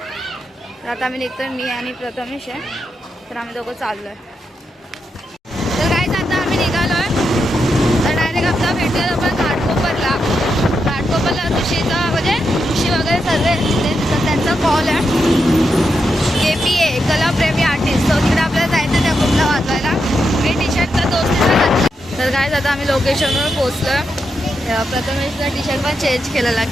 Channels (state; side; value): normal; both; correlation 0.85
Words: तर आता आम्ही निघतोय, मी आणि प्रथमेश आहे. तर आम्ही दोघं चाललो आहे. तर काय आता आम्ही निघालो आहे. तर डायरेक्ट आपला भेटूया आपण घाटकोपरला. घाटकोपरला ऋषीचा म्हणजे ऋषी वगैरे सर्व तिथे. तर त्यांचा कॉल आहे KPA कलाप्रेमी आर्टिस्ट. तो तिकडे आपल्याला जायचं त्या ग्रुपला वाजवायला. मी टी शर्ट तर दोस्तीला घातलं. तर काय आता आम्ही लोकेशनवर पोचलो. प्रथमेशचा टी शर्ट पण चेंज केलेला